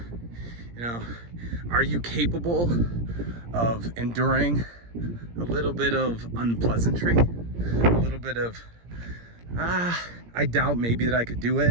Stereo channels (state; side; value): late; left; 17 ms